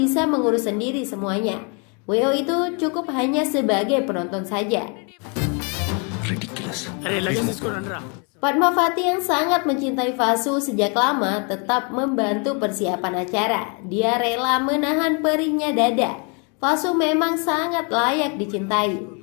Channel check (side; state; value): right; quieter; 35.2 dB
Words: mengurus sendiri semuanya. WO itu cukup hanya sebagai penonton saja. Padmavati yang sangat mencintai Fasu sejak lama tetap membantu persiapan acara. Dia rela menahan perihnya dada. Fasu memang sangat layak dicintai.